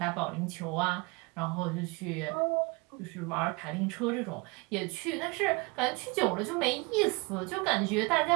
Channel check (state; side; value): quieter; left; 28.1 dB